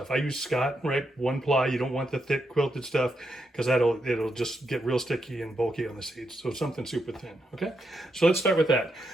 I use Scott, right? 1 ply. You don't want the thick quilted stuff because it'll just get real sticky and bulky on the seeds. So something super thin, okay? So let's start with that.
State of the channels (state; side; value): normal; both; correlation 0.82